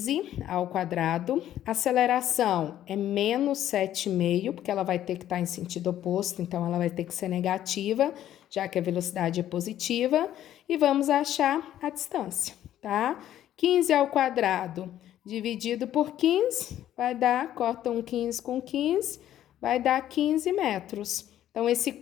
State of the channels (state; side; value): quieter; right; 11.9 dB